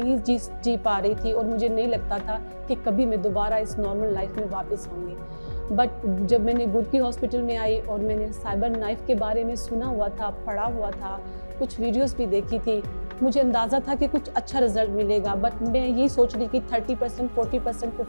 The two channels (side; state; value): both; inverted; correlation -1.00